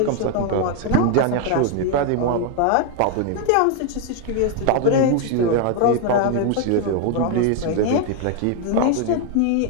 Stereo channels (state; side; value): different; both; correlation 0.01